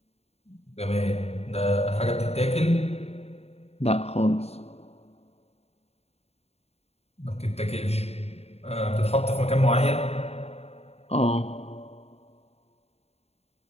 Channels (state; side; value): late; right; 0.30 ms